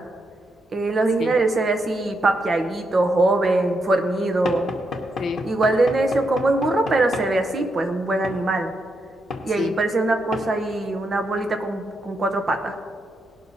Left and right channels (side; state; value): both; normal; correlation 0.82